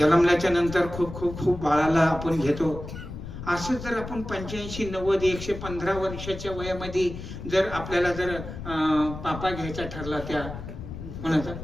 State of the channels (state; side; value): noise; left; rumble, 10 dB below the sound